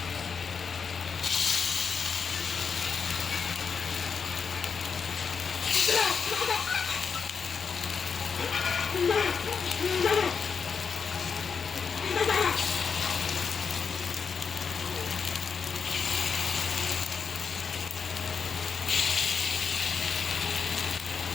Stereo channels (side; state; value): right; quieter; 5.9 dB